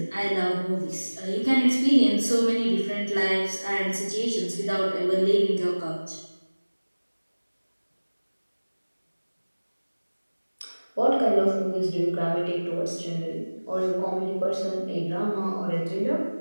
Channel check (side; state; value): both; inverted; correlation -1.00